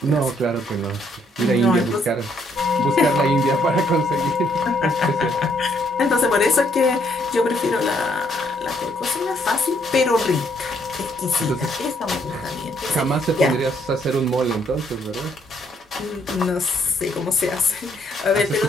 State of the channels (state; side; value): normal; both; correlation 0.69